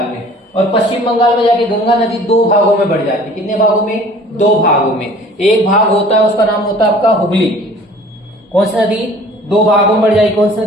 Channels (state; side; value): normal; both; correlation 0.49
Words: में। और पश्चिम बंगाल में जाके गंगा नदी दो भागों में बढ़ जाती है। कितने भागों में? दो भागों में। एक भाग होता है उसका नाम होता है आपका हुगली। कौन सी नदी? दो भागों में बढ़ जाएगी। कौन सी